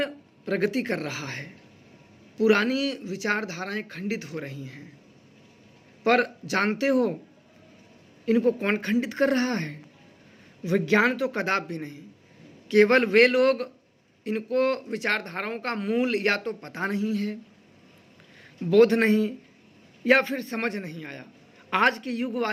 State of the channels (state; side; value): identical; both; correlation 1.00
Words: प्रगति कर रहा है। पुरानी विचारधाराएं खंडित हो रही हैं, पर जानते हो इनको कौन खंडित कर रहा है? विज्ञान तो कदापि नहीं। केवल वे लोग, इनको विचारधाराओं का मूल या तो पता नहीं है, बोध नहीं, या फिर समझ नहीं आया। आज के युग